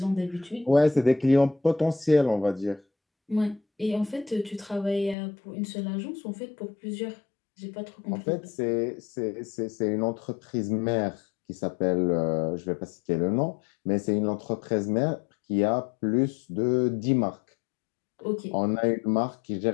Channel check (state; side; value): drops out; right; at 5.2 s